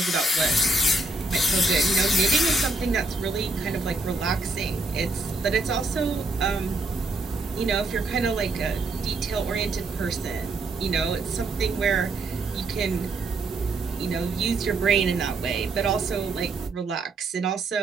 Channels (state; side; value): quieter; left; 3.1 dB